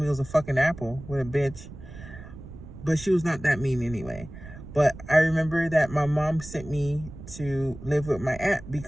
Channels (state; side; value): noise; right; rumble, 14 dB below the sound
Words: it was a fucking apple. What a bitch. But she was not that mean anyway. But I remember that my mom sent me to live with my aunt